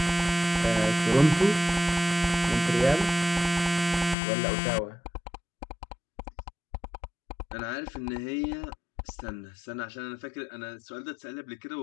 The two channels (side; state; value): right; drops out; at 4.2 s